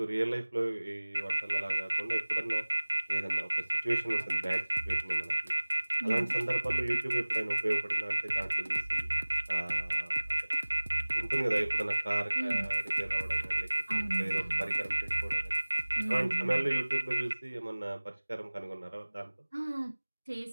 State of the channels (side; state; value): both; inverted; correlation -1.00